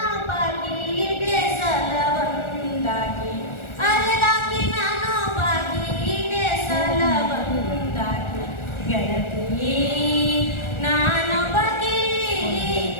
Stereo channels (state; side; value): late; right; 1.4 ms